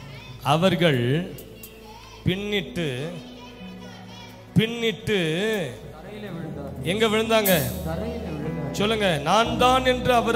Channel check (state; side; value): identical; both; correlation 1.00